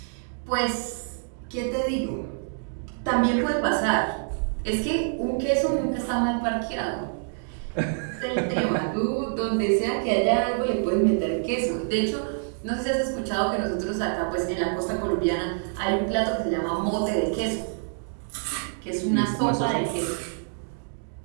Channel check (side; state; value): left; silent; digital silence